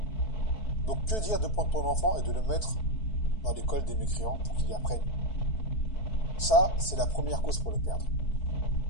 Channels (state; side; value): late; right; 4.6 ms